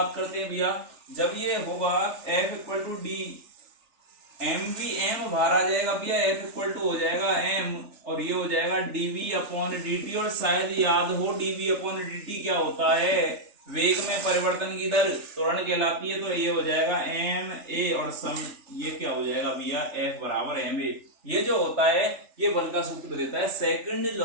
करते हैं भैया, जब ये होगा f equal to D mv, m बाहर आ जाएगा भैया, f इक्वल टू हो जाएगा m और ये हो जाएगा dv अपॉन dt। और शायद याद हो dv अपॉन dt क्या होता है, वेग में परिवर्तन की दर त्वरण कहलाती है, तो ये हो जाएगा m a और सम ये क्या हो जाएगा भैया, f बराबर m a। ये जो होता है ये बल का सूत्र देता है, सेकंड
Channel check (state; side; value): late; left; 3.4 ms